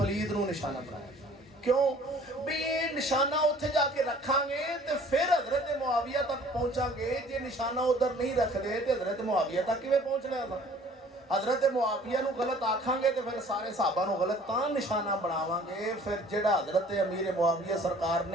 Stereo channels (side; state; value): both; normal; correlation 0.53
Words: नूं निशाना बनाया क्यों भी ये निशाना उत्थे जाके रखांगे तो फिर हजरत मुआविया तक पहुंचांगे। जे निशाना उधर नहीं रखते तो हजरत मुआविया तक किवें पहुंचना है? हजरत मुआविया नूं गलत आखांगे तो फिर सारे साहबा नूं गलत तां निशाना बनावांगे। फिर जिहड़ा हजरत अमीर मुआविया सरकार